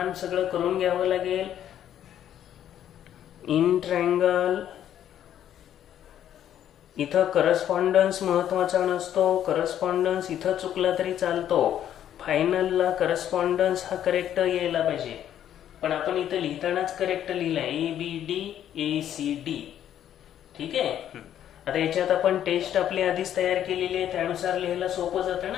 सगळं करून घ्यावं लागेल. इन ट्रायंगल इथं करस्पॉन्डन्स महत्वाचा नसतो. करस्पॉन्डन्स इथं चुकला तरी चालतो. फायनलला करस्पॉन्डन्स हा करेक्ट यायला पाहिजे. पण आपण इथं लिहितानाच करेक्ट लिहिलाय ABD ठीक आहे. आता याच्यात आपण टेस्ट आपली आधीच तयार केलेली आहे, त्यानुसार लिहायला सोपं जातं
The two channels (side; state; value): right; quieter; 10.6 dB